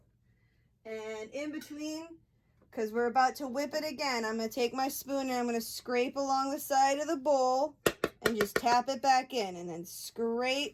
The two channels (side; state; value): both; identical; correlation 1.00